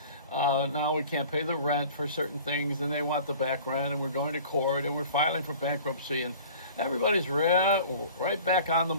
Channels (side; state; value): both; inverted; correlation -0.45